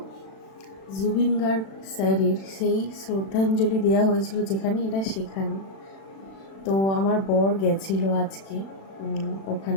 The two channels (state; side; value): late; right; 36 ms